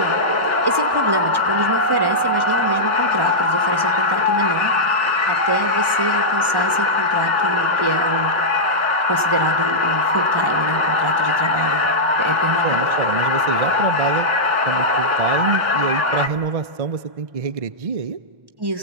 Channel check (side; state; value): left; late; 1.1 ms